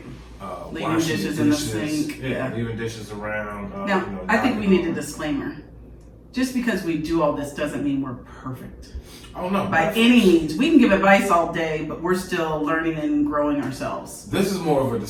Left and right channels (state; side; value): identical; both; correlation 1.00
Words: Leaving washing dishes in the sink. Yeah, leaving dishes around. Now, I think we need a disclaimer. just because we do all this doesn't mean we're perfect. Oh no! By any means, we can give advice all day, but we're still learning and growing ourselves. This is more of a